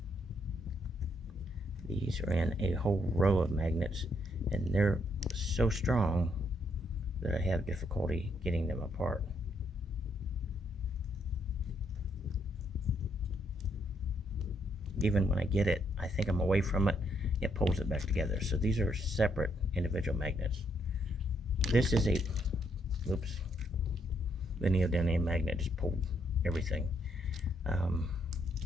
these are in a whole row of magnets, and they're so strong that I have difficulty getting them apart. Even when I get it, I think I'm away from it, it pulls it back together. So these are separate individual magnets. This is the neodymium magnet just pulled everything.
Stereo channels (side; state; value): both; normal; correlation 0.74